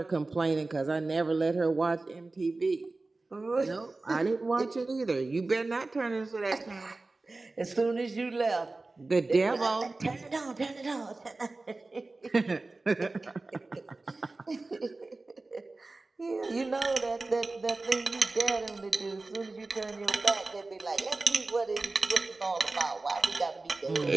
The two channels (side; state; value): left; quieter; 3.3 dB